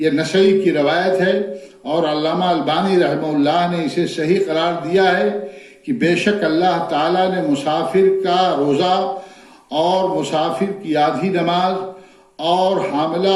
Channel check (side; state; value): both; identical; correlation 1.00